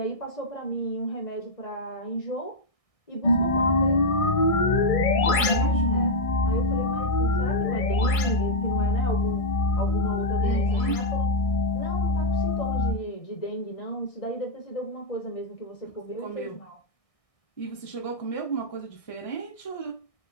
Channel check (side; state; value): right; late; 1.6 ms